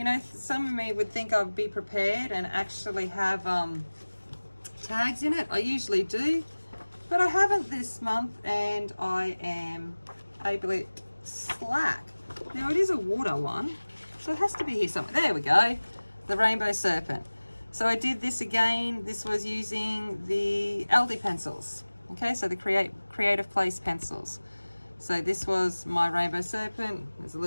know, some of me would think I'd be prepared and actually have tags in it. I usually do, but I haven't this month, and I am a bit slack. Now it is a water one, so it has to be here somewhere. There we go, the Rainbow Serpent. So I did this again. This was using the Aldi pencils. Okay, so the Creative Place pencils. So this was my Rainbow Serpent. There's a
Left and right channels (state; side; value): inverted; both; correlation -1.00